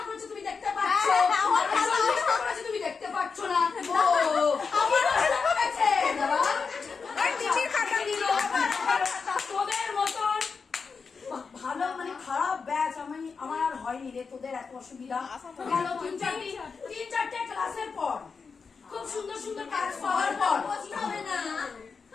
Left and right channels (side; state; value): right; quieter; 5.2 dB